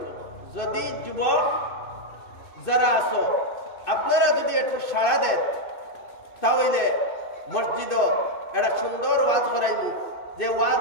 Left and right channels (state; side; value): late; right; 2.6 ms